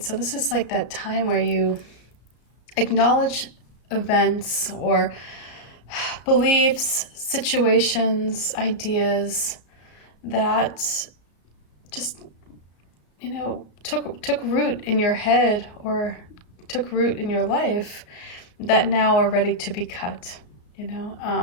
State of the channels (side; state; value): right; late; 34 ms